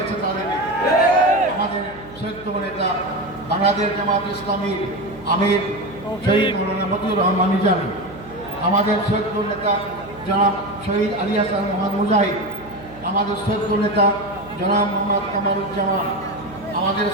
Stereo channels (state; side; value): noise; right; hum, 20 dB below the sound